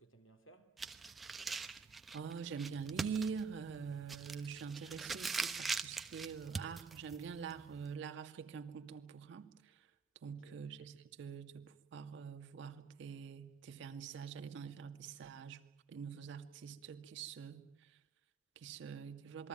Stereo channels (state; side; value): quieter; left; 5.3 dB